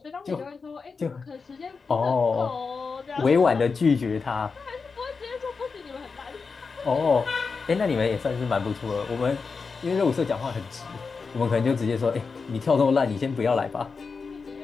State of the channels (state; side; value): quieter; right; 4.9 dB